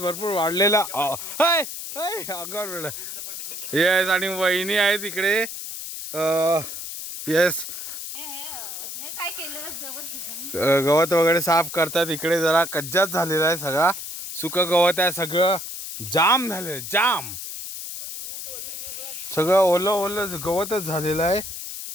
वाढलेला अंगावर वेळ येस आणि वहिनी आहेत इकडे. येस गवत वगैरे साफ करतात. इकडे जरा कज्जात झालेला आहे, सगळा सुक गवत आहे, सगळं जाम झालेलं जाम, सगळं ओलं ओलं गवतच झालेलं आहे.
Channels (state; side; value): noise; left; hiss, 8 dB below the sound